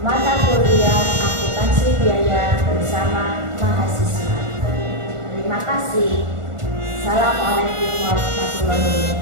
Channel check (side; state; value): left; late; 1.4 ms